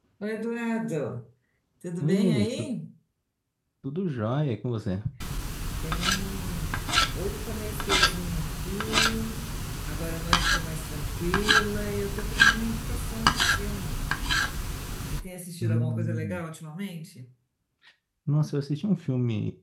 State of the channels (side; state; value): both; identical; correlation 1.00